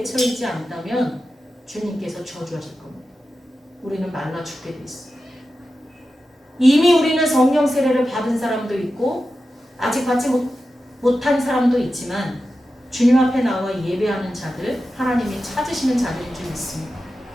않다면 주님께서 저주하실 겁니다. 우리는 말라 죽게 돼 있어요. 이미 우리는 성령 세례를 받은 사람도 있고 아직 받지 못한 사람도 있지만 주님 앞에 나와 예배하는 자들, 하나님이 찾으시는 자들이 좀 있습니다.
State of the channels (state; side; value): normal; both; correlation 0.92